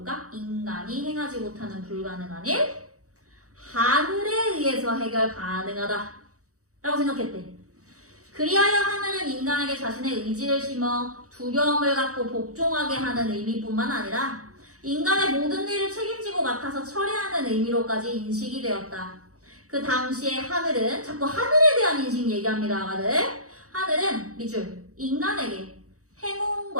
인간이 행하지 못하는 불가능한 일, 하늘에 의해서 해결 가능하다 라고 생각했대. 그리하여 하늘은 인간에게 자신의 의지를 심어 두려움을 갖고 복종하게 하는 의미뿐만 아니라 인간의 모든 일을 책임지고 맡아서 처리하는 의미로까지 인식이 되었다. 그 당시에 하늘은, 자꾸 하늘에 대한 인식 얘기합니다, 아가들. 하늘은 밑줄, 인간에게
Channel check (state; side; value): late; left; 0.65 ms